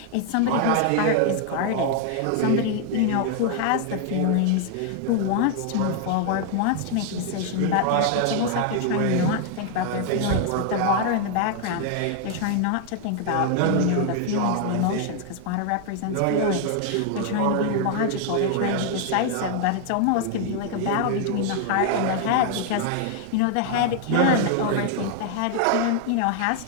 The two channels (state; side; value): different; both; correlation 0.00